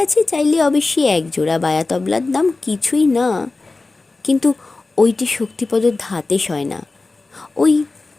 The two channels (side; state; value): right; quieter; 3.5 dB